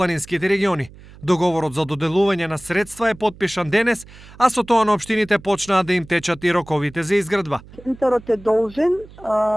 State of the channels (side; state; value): right; noise; hum, 21 dB below the sound